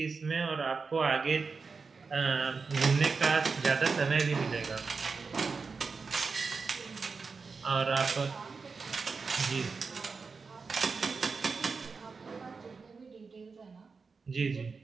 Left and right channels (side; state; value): left; quieter; 4.8 dB